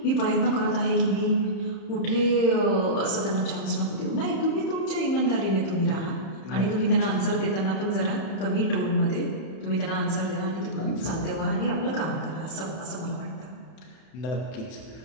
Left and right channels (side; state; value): right; late; 31 ms